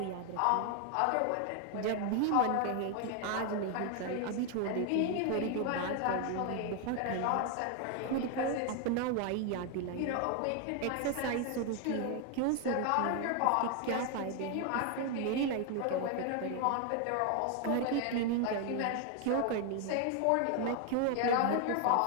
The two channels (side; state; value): both; different; correlation 0.01